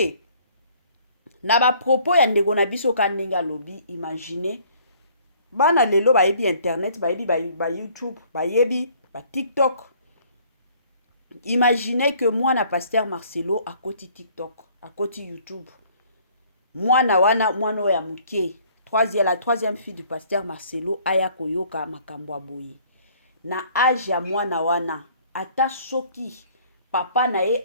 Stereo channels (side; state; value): both; inverted; correlation -0.57